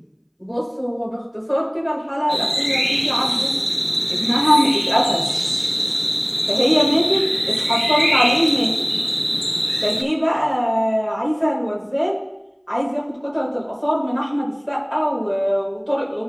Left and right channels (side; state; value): both; identical; correlation 1.00